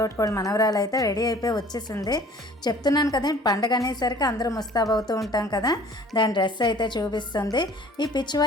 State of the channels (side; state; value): both; normal; correlation 0.50